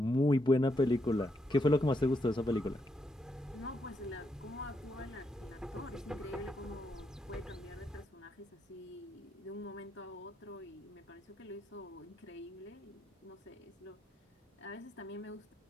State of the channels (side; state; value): both; normal; correlation 0.79